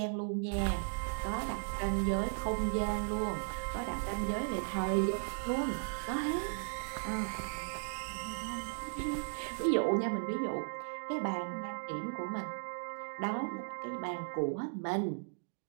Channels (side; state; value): left; silent; digital silence